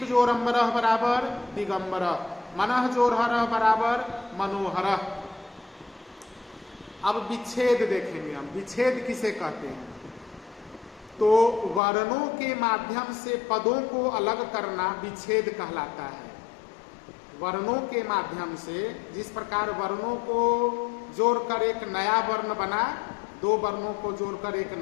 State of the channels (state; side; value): drops out; right; at 11.8 s